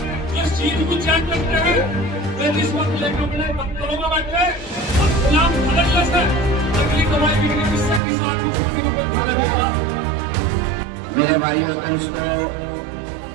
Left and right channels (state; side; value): drops out; left; at 8.0 s